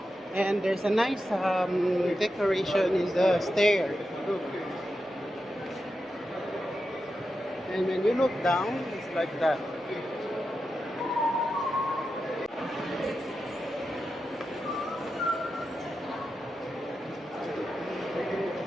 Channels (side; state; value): both; normal; correlation 0.89